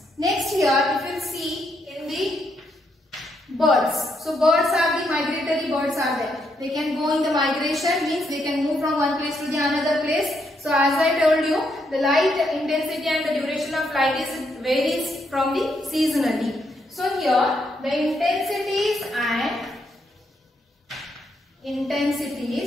Next here, if you see in the birds. So birds are the migratory birds are there. They can go in the migration, means they can move from one place to the another place. So as I told you, the light intensity and the duration of light is varies from the seasonally. So here the intensities and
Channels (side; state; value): both; normal; correlation 0.77